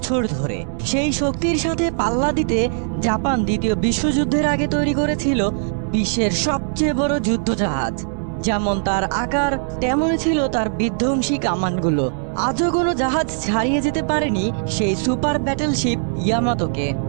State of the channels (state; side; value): silent; left; digital silence